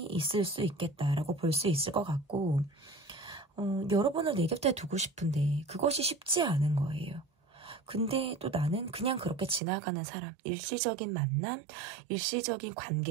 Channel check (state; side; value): drops out; left; at 9.6 s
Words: 있을 수 있겠다라고 볼 수 있을 것 같고 여러분을 내 곁에 두고 싶은데 그것이 쉽지 않은 거예요. 근데 또 나는 그냥 그렇게 지나가는 사람, 일시적인 만남, 일시적인